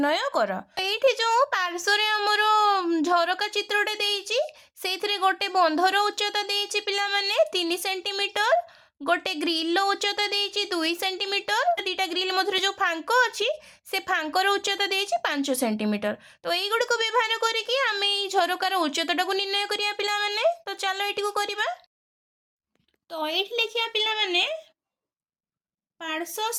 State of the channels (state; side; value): identical; both; correlation 1.00